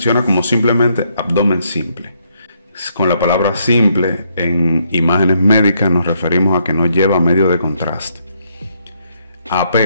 como simplemente abdomen simple. Con la palabra simple en imágenes médicas nos referimos a que no lleva medio de contraste. AP,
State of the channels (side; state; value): both; inverted; correlation -0.74